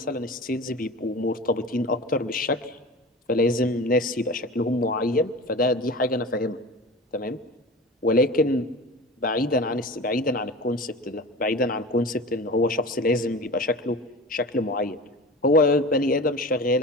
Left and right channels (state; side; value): normal; both; correlation 0.34